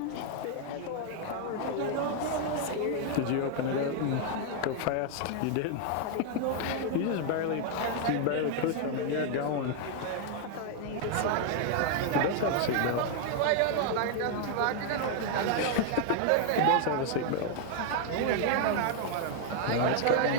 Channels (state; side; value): different; both; correlation 0.00